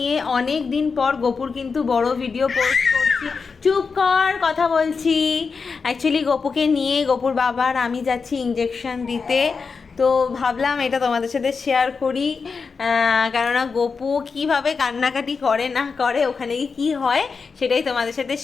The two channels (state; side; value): quieter; right; 5.1 dB